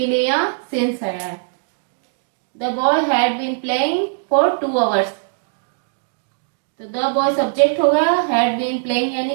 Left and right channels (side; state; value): left; silent; digital silence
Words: लिए यहाँ सिंस है। The boy had been playing for 2 hours, तो द बॉय सब्जेक्ट हो गया, हैड बीन प्लेइंग